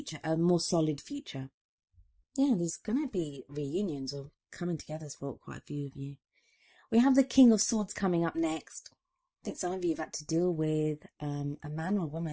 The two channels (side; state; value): both; identical; correlation 1.00